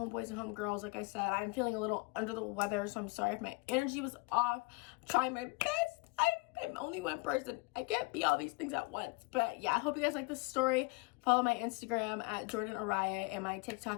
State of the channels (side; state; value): right; quieter; 26.5 dB